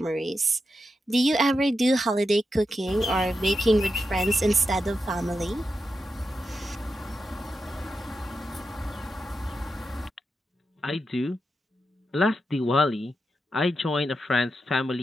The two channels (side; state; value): both; normal; correlation 0.88